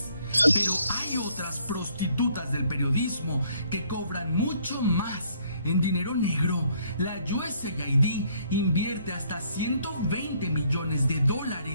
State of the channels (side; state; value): both; inverted; correlation -0.65